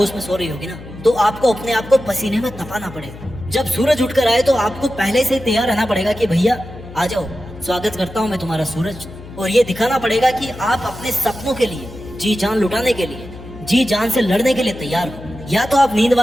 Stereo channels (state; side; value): noise; left; hum, 16 dB below the sound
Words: में सो रही होगी ना, तो आपको अपने आप को पसीने में तपाना पड़ेगा। जब सूरज उठकर आए तो आपको पहले से तैयार रहना पड़ेगा कि भैया आ जाओ, स्वागत करता हूँ मैं तुम्हारा सूरज। और ये दिखाना पड़ेगा कि आप अपने सपनों के लिए जी जान लुटाने के लिए, जी जान से लड़ने के लिए तैयार हो। या तो आप नींद